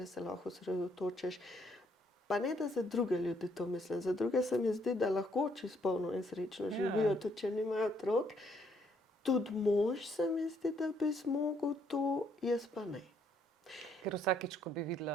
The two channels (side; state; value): both; normal; correlation 0.70